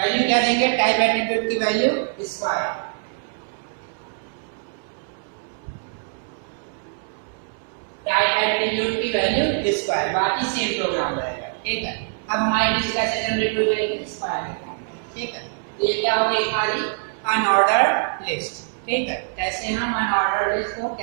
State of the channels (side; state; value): left; silent; digital silence